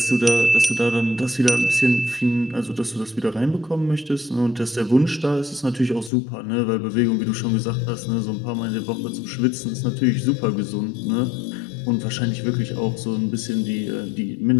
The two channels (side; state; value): right; drops out; at 6.1 s